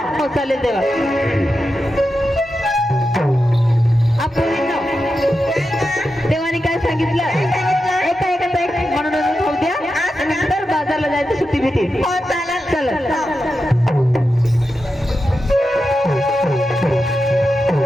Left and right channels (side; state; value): both; normal; correlation 0.89